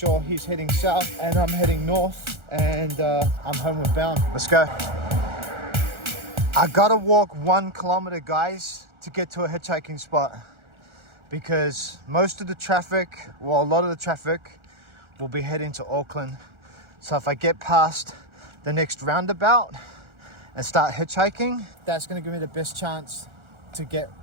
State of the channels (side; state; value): left; late; 1.4 ms